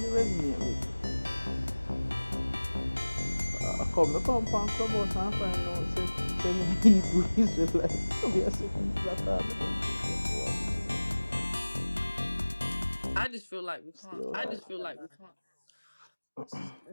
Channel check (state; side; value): inverted; both; correlation -1.00